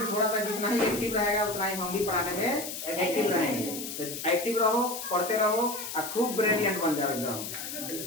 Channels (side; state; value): left; noise; hiss, 7 dB below the sound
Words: थोड़ा सा जितना ही एक्टिव रहेगा उतना ही हम भी पढ़ाने में एक्टिव रहेंगे। तो एक्टिव रहो, पढ़ते रहो और खूब ब्रिलियंट बन जाओ एकदम,